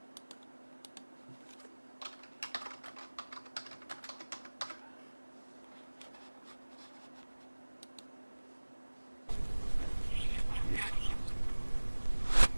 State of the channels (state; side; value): inverted; both; correlation -1.00